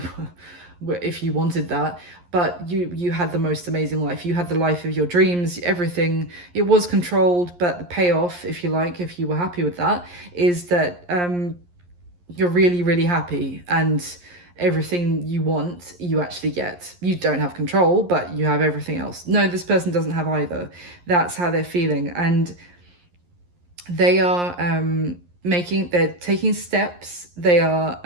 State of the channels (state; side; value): late; left; 11 ms